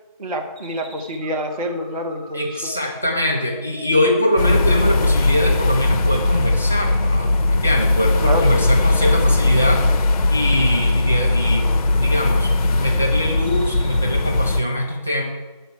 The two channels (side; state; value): both; inverted; correlation -0.83